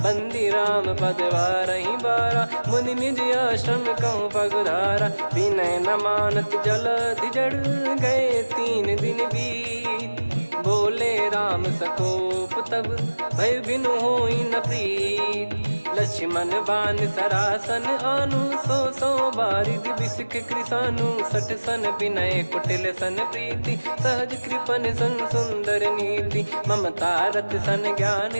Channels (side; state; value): both; inverted; correlation -1.00